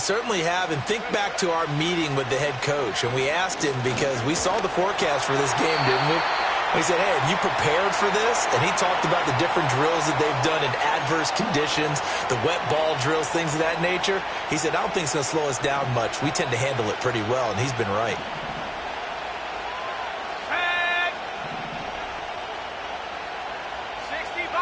have, and think back to our meeting with the head coach, and we asked him because we saw the forecast for this game, didn't we? We said, hey, have you prepared for this? And he talked about the different drills that they've done in adverse conditions, the wet ball drills, things of that nature. He said, I don't think it's going to slow us down much. We tend to handle it pretty well, and he's been right.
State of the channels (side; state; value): both; identical; correlation 1.00